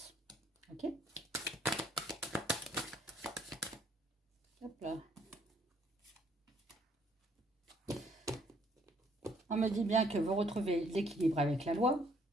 Ok? Hop là. On me dit bien que vous retrouvez l'équilibre avec la loi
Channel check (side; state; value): both; normal; correlation 0.65